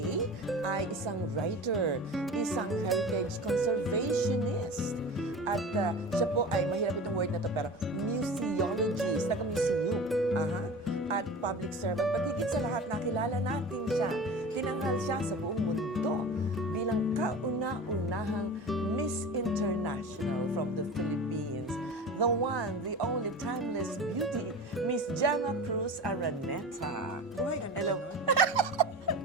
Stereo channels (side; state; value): both; normal; correlation 0.34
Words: ay isang writer, isang heritage conservationist. At siya po ay, mahirap itong word na to, pero museologist, taga-museum. Aha. At public servant. But higit sa lahat, nakilala natin siya. Tinanghal siya sa buong mundo bilang kauna-unahang Miss International from the Philippines. The one, the only timeless beauty, Miss Gemma Cruz Araneta. Oh, ay, ganda Hello. nun.